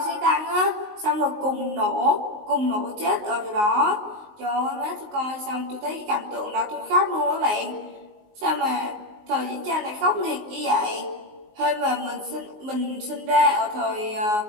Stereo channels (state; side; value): late; left; 19 ms